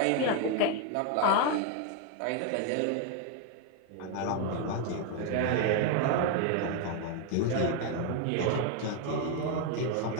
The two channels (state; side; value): different; both; correlation 0.01